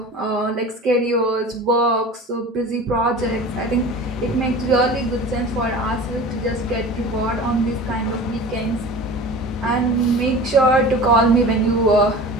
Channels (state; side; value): normal; both; correlation 0.37